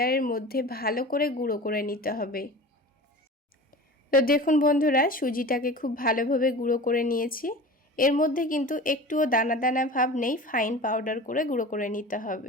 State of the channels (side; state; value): both; normal; correlation 0.36